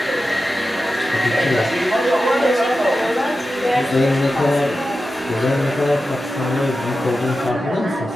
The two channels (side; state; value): both; normal; correlation 0.92